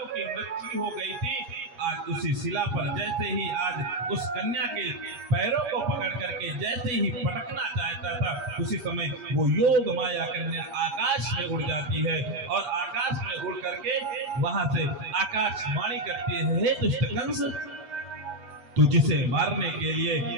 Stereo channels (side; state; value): left; late; 8.4 ms